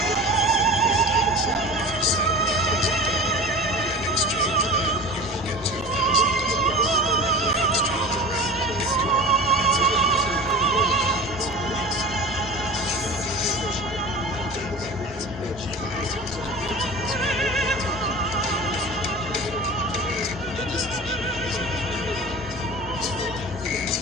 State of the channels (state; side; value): normal; both; correlation 0.35